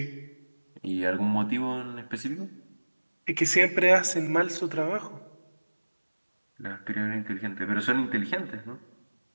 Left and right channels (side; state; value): both; inverted; correlation -1.00